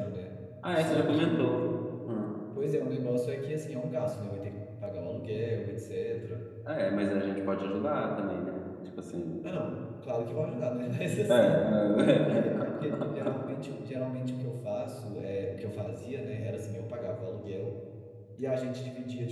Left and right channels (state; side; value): identical; both; correlation 1.00